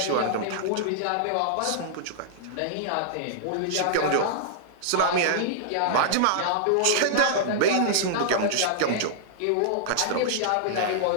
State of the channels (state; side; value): different; both; correlation -0.01